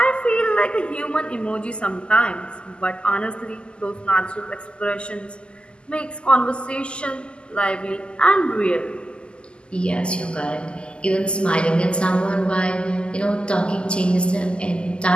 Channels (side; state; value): right; late; 0.050 ms